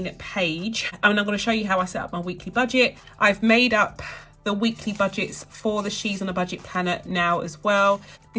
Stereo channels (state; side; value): identical; both; correlation 1.00